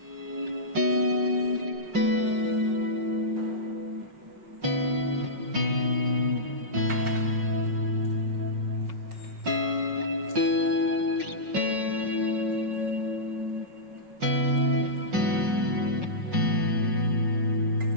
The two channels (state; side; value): late; left; 5.4 ms